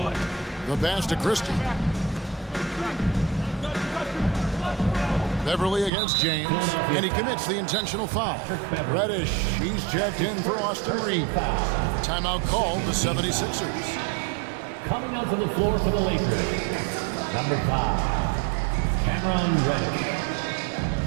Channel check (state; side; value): drops out; left; at 5.9 s